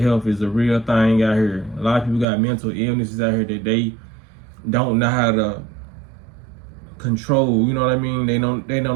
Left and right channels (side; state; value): left; drops out; at 2.2 s